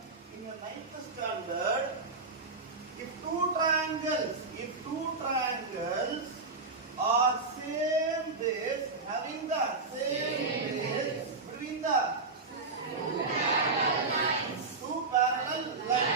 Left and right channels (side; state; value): left; quieter; 3.9 dB